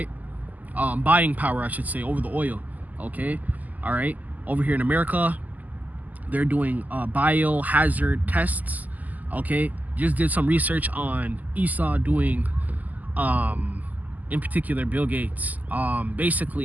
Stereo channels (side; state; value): left; late; 0.080 ms